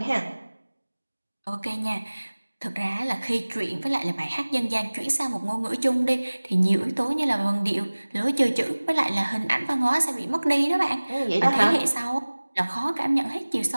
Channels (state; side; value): inverted; both; correlation -1.00